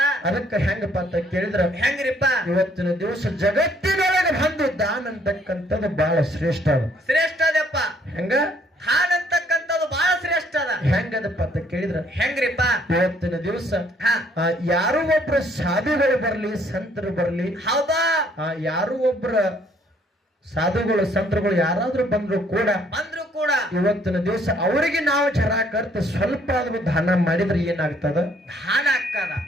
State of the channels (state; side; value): normal; both; correlation 0.64